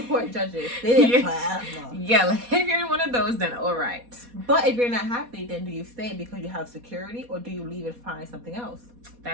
Court judges, they forever. Yeah, like if you're in one of those, then all right. But if you're not happy, then do you stay because you have security, or do you leave and find something else?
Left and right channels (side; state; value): left; late; 4.1 ms